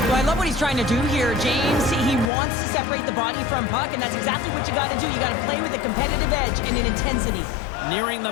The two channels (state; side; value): drops out; right; at 2.3 s